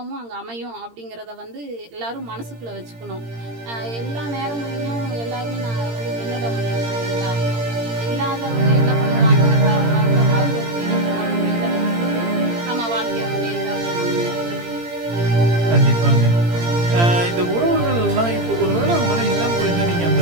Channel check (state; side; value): late; left; 17 ms